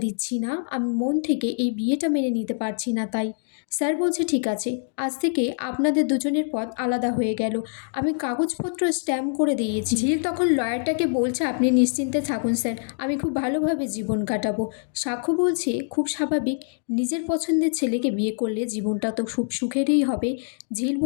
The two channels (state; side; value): silent; right; digital silence